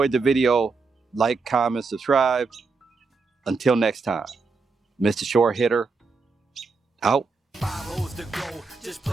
the video, like, comment, subscribe. Until next time, Mr. Short Hitter, out. 5 holes to go, just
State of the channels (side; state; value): left; quieter; 4.4 dB